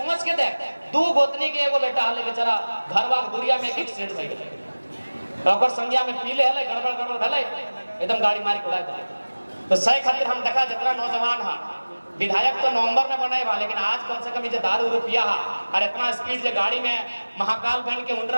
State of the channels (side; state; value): both; inverted; correlation -1.00